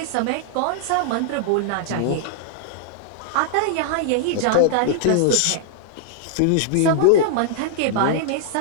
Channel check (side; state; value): both; different; correlation -0.01